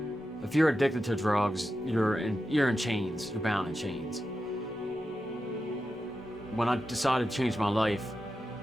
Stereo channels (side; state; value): both; normal; correlation 0.90